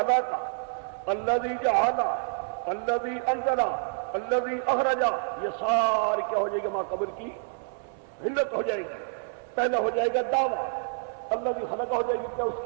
الذی جعل، الذی انزل، الذی اخرج، یہ ساری کیا ہو جائے گی ما قبل کی علت ہو جائے گی۔ پہلا ہو جائے گا دعویٰ، الذی خلق ہو جائے گی کیا اس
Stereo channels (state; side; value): silent; left; 59 dB below the other